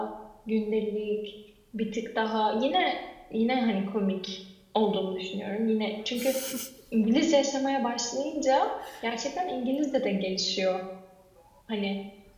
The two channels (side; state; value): both; identical; correlation 1.00